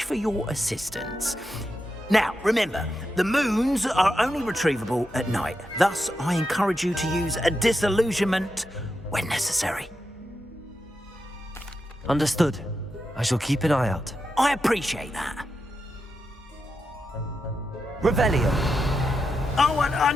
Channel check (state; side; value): normal; both; correlation 0.87